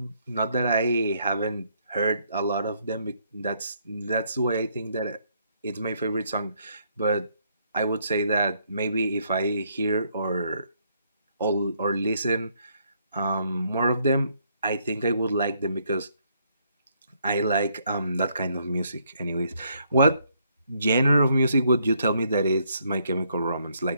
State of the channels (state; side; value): inverted; both; correlation -0.71